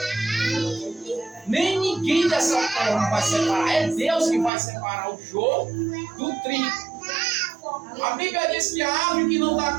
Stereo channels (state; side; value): drops out; left; at 4.5 s